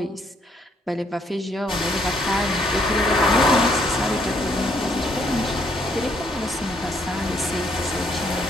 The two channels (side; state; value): both; normal; correlation 0.69